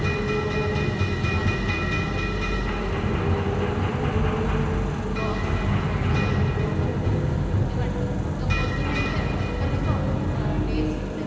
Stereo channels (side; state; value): both; identical; correlation 1.00